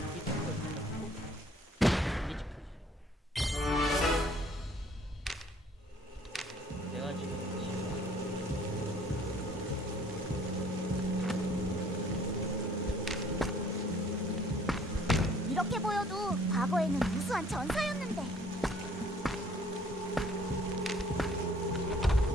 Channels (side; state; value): both; normal; correlation 0.58